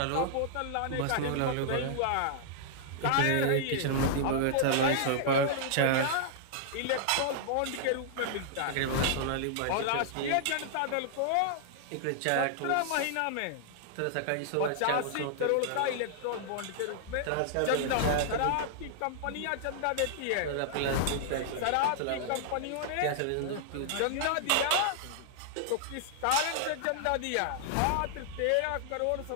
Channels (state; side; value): different; both; correlation -0.01